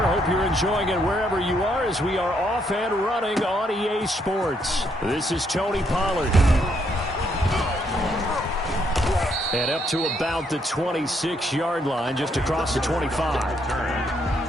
Hope you're enjoying it wherever you are as we are off and running on EA Sports. This is Tony Pollard. And up to about the 26-yard line, just across the 25.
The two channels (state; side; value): normal; both; correlation 0.73